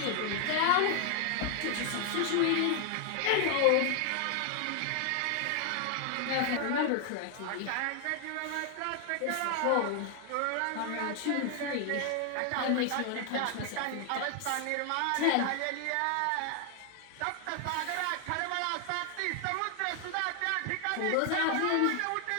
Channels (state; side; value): different; both; correlation 0.00